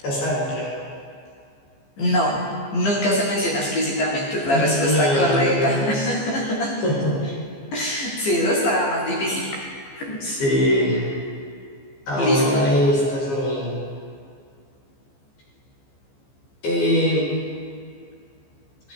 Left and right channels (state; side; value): late; right; 15 ms